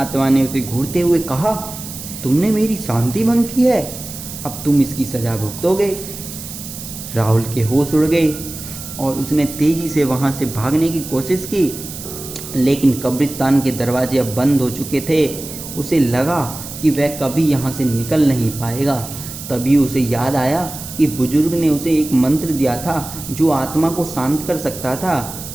ने उसे घूरते हुए कहा, तुमने मेरी शांति भंग की है, अब तुम इसकी सजा भुगतोगे। राहुल के होश उड़ गए और उसने तेजी से वहां से भागने की कोशिश की, लेकिन कब्रिस्तान के दरवाजे अब बंद हो चुके थे। उसे लगा कि वह कभी यहाँ से निकल नहीं पाएगा। तभी उसे याद आया कि बुजुर्ग ने उसे एक मंत्र दिया था जो आत्मा को शांत कर सकता था।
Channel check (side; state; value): right; noise; hiss, 11 dB below the sound